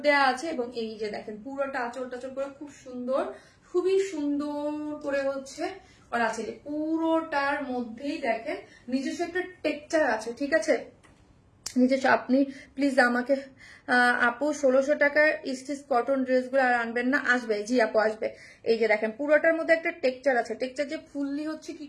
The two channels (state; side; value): identical; both; correlation 1.00